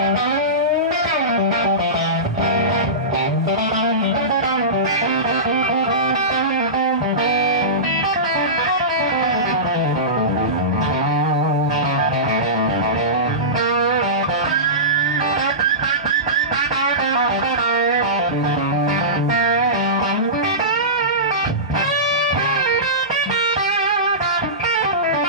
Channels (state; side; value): normal; both; correlation -0.20